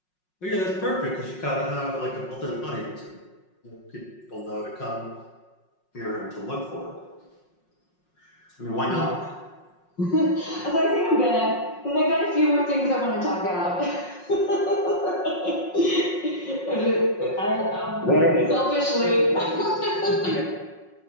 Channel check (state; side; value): late; right; 5.5 ms